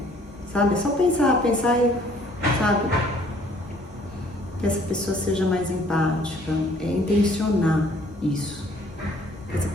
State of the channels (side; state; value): both; normal; correlation 0.59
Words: Sabe? É só pensar e, sabe? Que essa pessoa seja mais empática, intencionar isso. Que essa